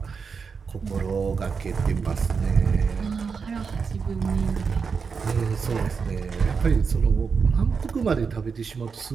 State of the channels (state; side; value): quieter; left; 5.6 dB